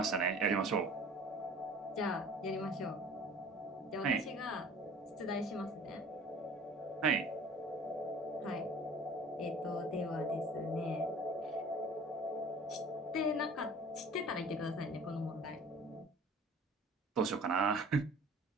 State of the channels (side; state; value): both; normal; correlation 0.46